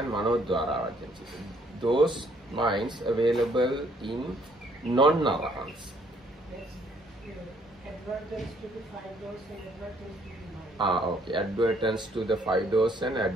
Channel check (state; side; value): normal; both; correlation 0.65